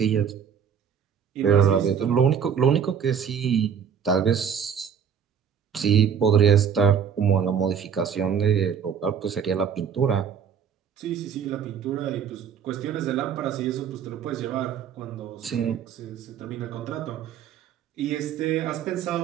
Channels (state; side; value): quieter; left; 7.6 dB